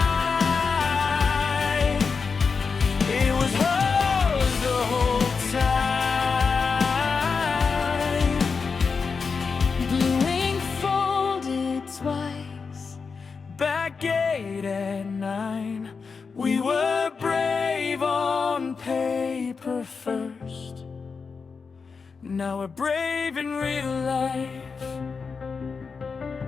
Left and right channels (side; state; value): right; quieter; 5.2 dB